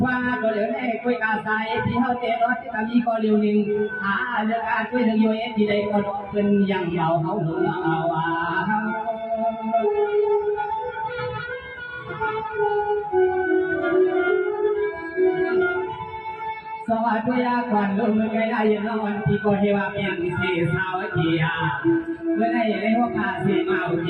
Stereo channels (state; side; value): identical; both; correlation 1.00